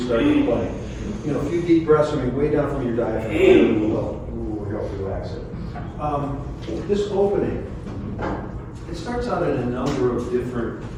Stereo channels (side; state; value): both; identical; correlation 1.00